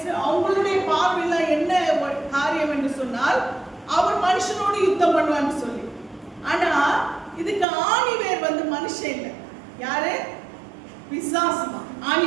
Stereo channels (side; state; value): left; drops out; at 7.7 s